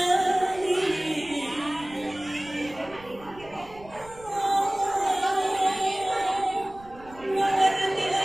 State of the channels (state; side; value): noise; right; rumble, 21 dB below the sound